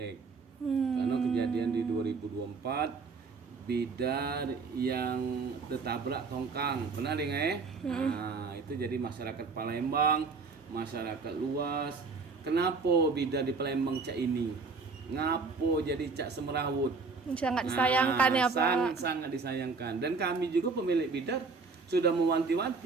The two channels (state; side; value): quieter; left; 4.5 dB